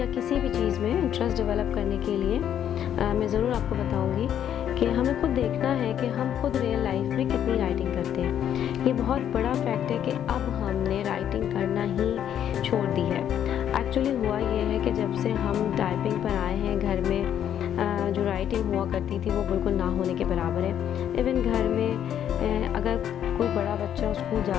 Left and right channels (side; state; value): right; quieter; 9.9 dB